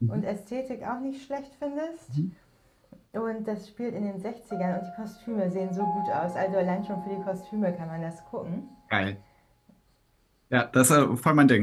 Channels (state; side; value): identical; both; correlation 1.00